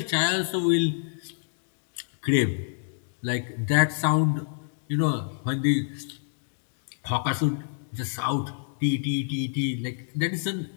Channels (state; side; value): silent; right; digital silence